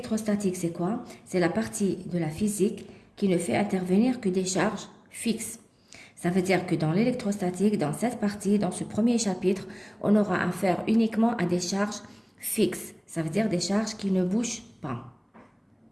c'est quoi? C'est la partie de la physique qui ne fait intervenir que des charges fixes. Ça veut dire que dans l'électrostatique, dans cette partie, dans ce premier chapitre, on aura affaire uniquement à des charges fixes. Ça veut dire des charges qui ne bougent pas.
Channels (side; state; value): both; identical; correlation 1.00